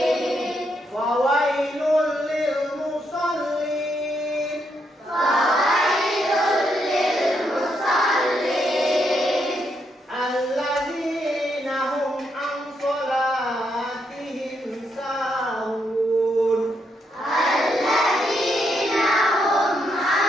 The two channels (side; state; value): both; normal; correlation 0.78